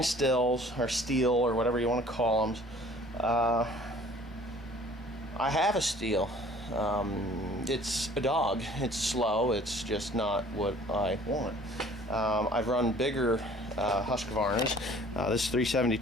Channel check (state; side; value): normal; both; correlation 0.51